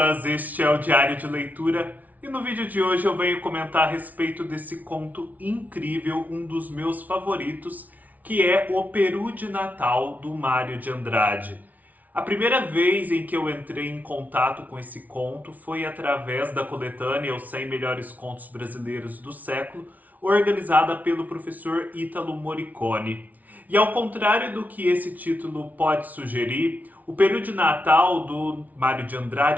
este é o Diário de Leitura e no vídeo de hoje eu venho comentar a respeito desse conto incrível, um dos meus favoritos, que é O Peru de Natal, do Mário de Andrade. A primeira vez em que eu entrei em contato com esse conto foi através da coletânea Os 100 Melhores Contos Brasileiros do Século, organizada pelo professor Ítalo Morricone. E ao contrário do que esse título pode sugerir, O Peru de Natal, do Mário de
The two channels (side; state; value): left; late; 0.075 ms